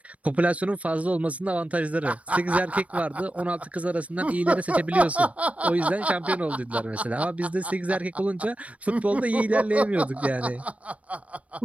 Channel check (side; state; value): left; late; 0.066 ms